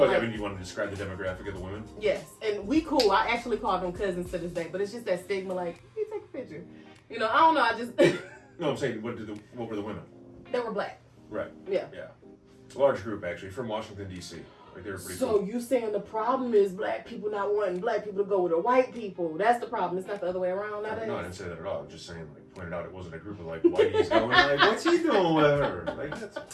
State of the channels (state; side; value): identical; both; correlation 1.00